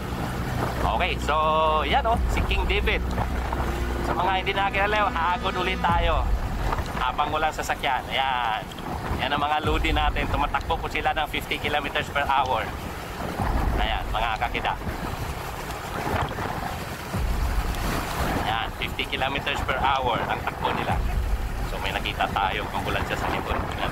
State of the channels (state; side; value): identical; both; correlation 1.00